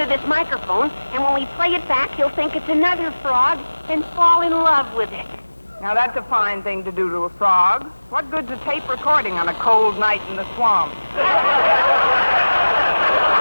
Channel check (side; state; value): both; inverted; correlation -1.00